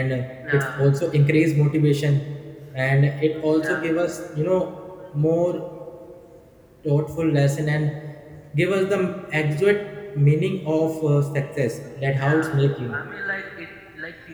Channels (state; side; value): identical; both; correlation 1.00